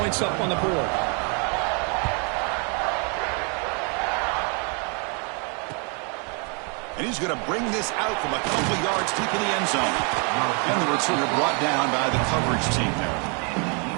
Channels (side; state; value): left; quieter; 36.3 dB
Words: up on the board. And he's going to bring this out from a couple yards deep in the end zone. And the returner brought down by the coverage team there.